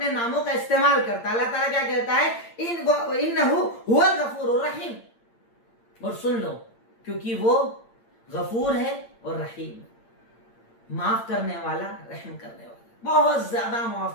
ناموں کا استعمال کرتا ہے. اللہ تعالیٰ کیا کہتا ہے انہ هو الغفور الرحیم. اور سن لو، کیونکہ وہ غفور ہے اور رحیم، معاف کرنے والا، رحم کرنے والا، بہت زیادہ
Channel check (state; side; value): late; right; 8.7 ms